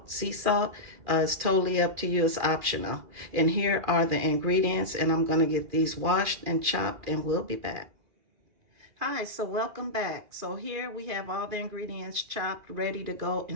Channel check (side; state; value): left; late; 2.4 ms